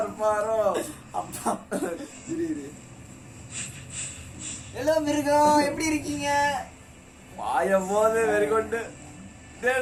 இருப்பாரோ அப்பா ஹலோ மிருகம் எப்படி இருக்கீங்க வாயம் போது வெறிகொண்டு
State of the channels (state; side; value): identical; both; correlation 1.00